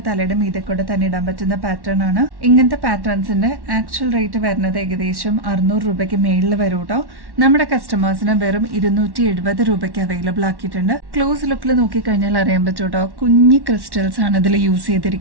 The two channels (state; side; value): late; left; 1.1 ms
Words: തലയുടെ മീതെ തന്നെ ഇടാൻ പറ്റുന്ന പാറ്റേൺ ആണ്. ഇങ്ങനത്തെ പാറ്റേൺസിന്റെ ആക്ച്വൽ റേറ്റ് വരുന്നത് ഏകദേശം 600 രൂപയ്ക്ക് മേളിൽ വരും കേട്ടോ. നമ്മുടെ കസ്റ്റമേഴ്സിന് വെറും 270 രൂപയ്ക്ക് അവൈലബിൾ ആക്കിയിട്ടുണ്ട്. ക്ലോസ് ലുക്കിൽ നോക്കിക്കഴിഞ്ഞാൽ അറിയാൻ പറ്റും കേട്ടോ. കുഞ്ഞി ക്രിസ്റ്റൽസ് ആണ് ഇതിൽ യൂസ്